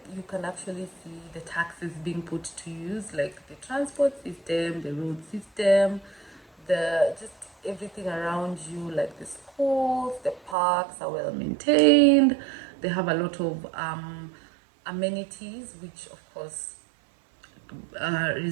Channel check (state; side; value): drops out; left; at 10.6 s